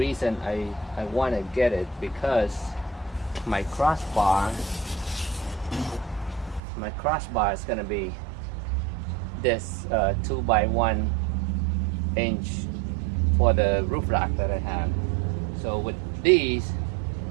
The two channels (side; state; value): left; drops out; at 6.6 s